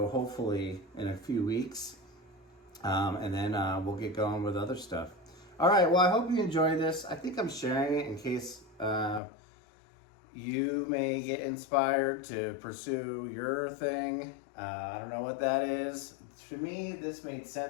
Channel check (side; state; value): right; drops out; at 9.2 s